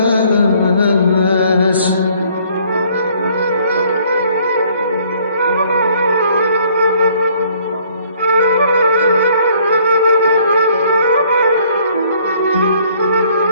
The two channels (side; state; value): both; inverted; correlation -0.61